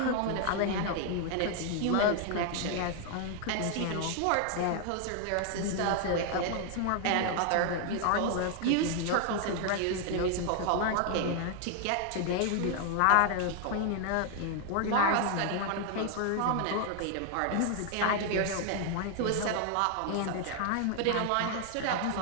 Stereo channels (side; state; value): both; different; correlation 0.00